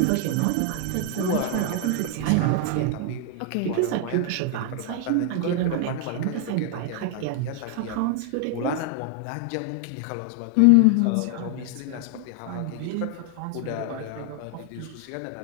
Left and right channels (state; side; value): different; both; correlation 0.00